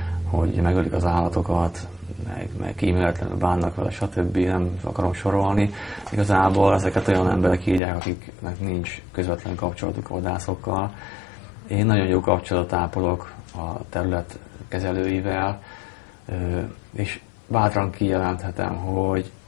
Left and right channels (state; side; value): drops out; right; at 7.8 s